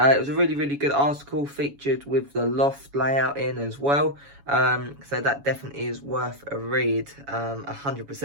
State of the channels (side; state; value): left; late; 7.1 ms